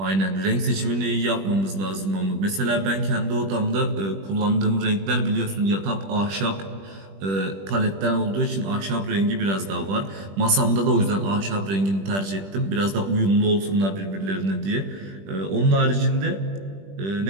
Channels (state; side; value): late; left; 20 ms